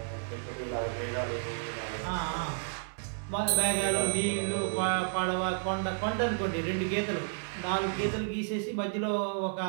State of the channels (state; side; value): silent; left; 57 dB below the other